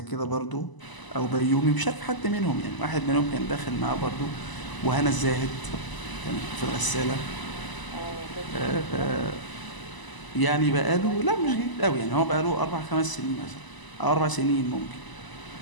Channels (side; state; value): right; late; 1.0 ms